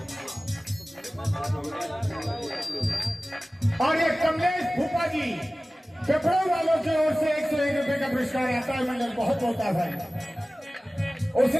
और ये कमलेश भूपा जी पेपरों वालों की ओर से 101 रुपए का पुरस्कार आता है, मंडल बहुत होता है।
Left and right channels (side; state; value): both; normal; correlation 0.97